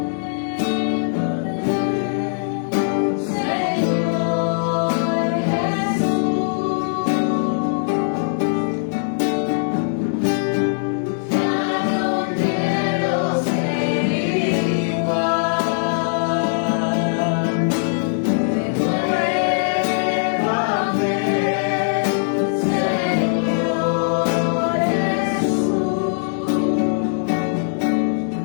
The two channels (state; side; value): silent; right; 65 dB below the other